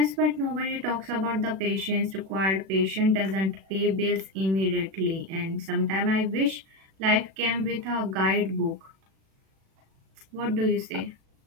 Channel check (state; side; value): late; left; 36 ms